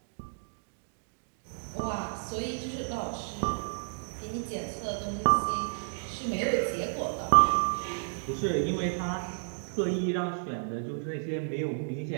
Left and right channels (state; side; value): silent; left; digital silence